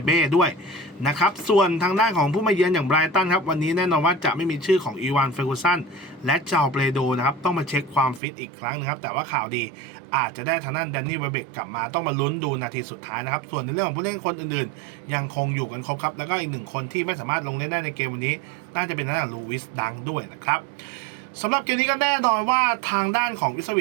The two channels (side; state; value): left; drops out; at 8.2 s